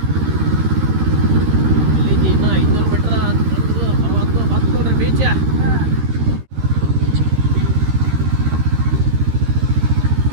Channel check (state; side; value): late; left; 13 ms